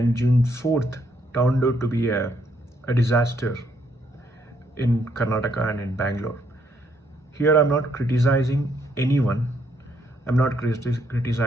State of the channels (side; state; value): both; normal; correlation 0.72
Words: June 4th turned out to be a disaster in Karnataka and in Bangalore. Here I'm not criticizing anyone. I'm not